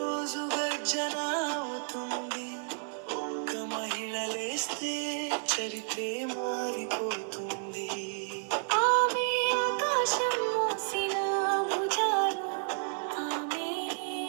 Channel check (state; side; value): silent; left; 57 dB below the other